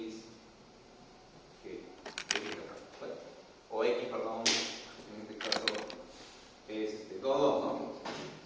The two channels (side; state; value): both; identical; correlation 1.00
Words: bueno, o x, perdón, en este caso es 2, 2, ¿no?